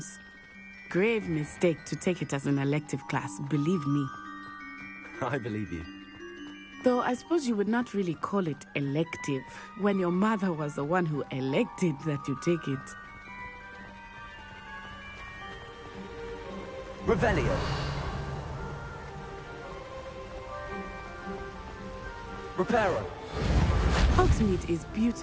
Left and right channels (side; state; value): both; identical; correlation 1.00